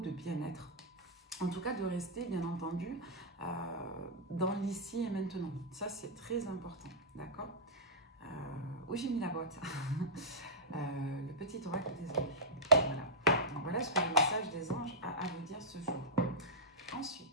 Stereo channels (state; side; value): normal; both; correlation -0.12